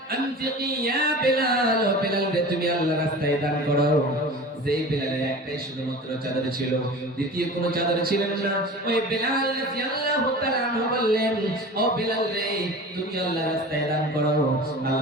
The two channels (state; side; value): normal; both; correlation 0.37